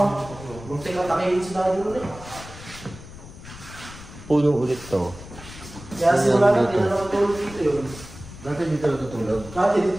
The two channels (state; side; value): noise; left; rumble, 15 dB below the sound